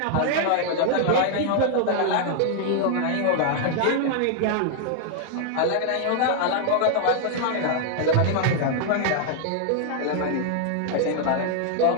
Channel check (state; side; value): different; both; correlation 0.00